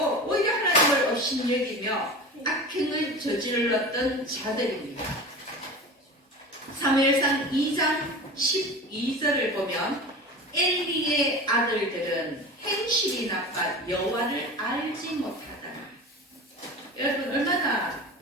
오히려 하나님을 업신여기며 악행을 저질렀던 자들입니다. 사무엘상 2장 12절을 보면 엘리의 아들들은 행실이 나빠 여호와를 알지 못하더라. 여러분, 얼마나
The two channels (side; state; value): both; normal; correlation 0.33